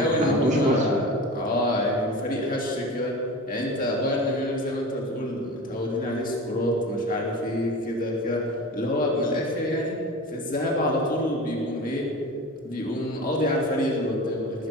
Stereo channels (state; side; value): normal; both; correlation 0.32